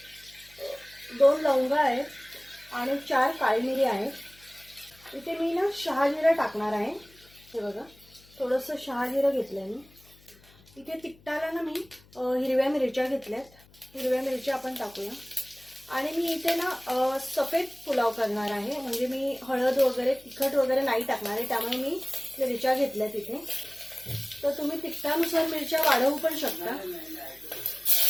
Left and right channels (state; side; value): noise; left; hum, 27 dB below the sound